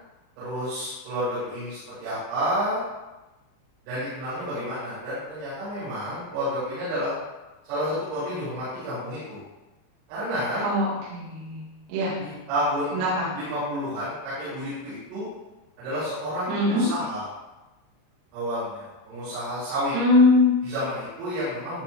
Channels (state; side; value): late; left; 39 ms